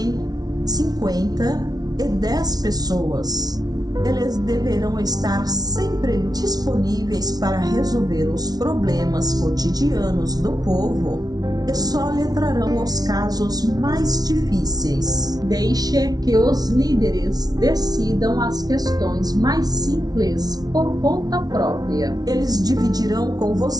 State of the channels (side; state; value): left; late; 0.19 ms